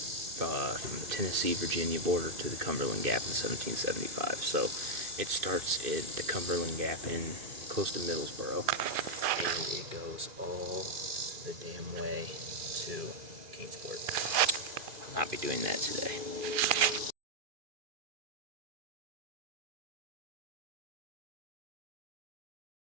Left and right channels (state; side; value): late; left; 2.4 ms